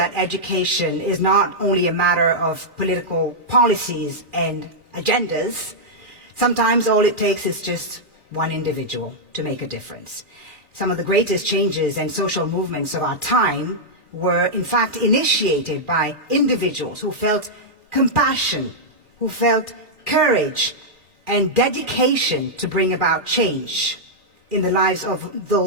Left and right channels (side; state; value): left; late; 2.4 ms